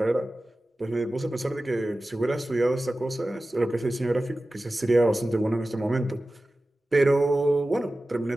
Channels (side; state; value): both; normal; correlation 0.95